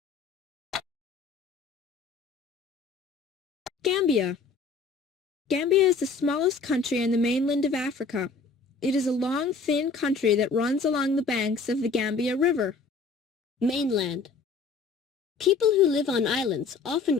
Gambia. Gambia is the smallest country in the mainland of Africa. It is a long, thin country that runs along the banks of the Gambia River. Mainland. People who live on islands often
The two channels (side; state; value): right; quieter; 4.5 dB